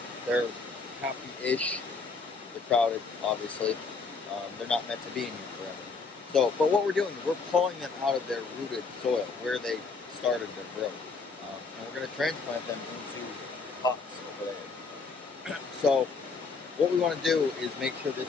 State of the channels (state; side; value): quieter; right; 4.4 dB